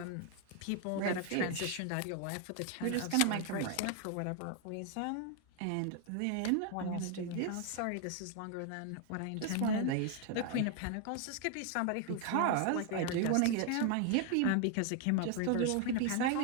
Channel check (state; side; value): different; both; correlation 0.01